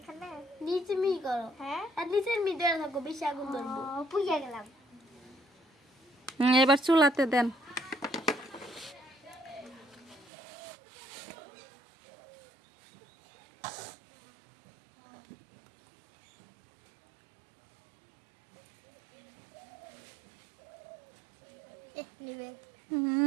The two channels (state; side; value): drops out; left; at 10.3 s